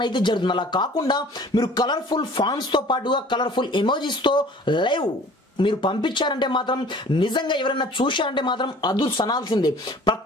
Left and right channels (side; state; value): both; normal; correlation 0.49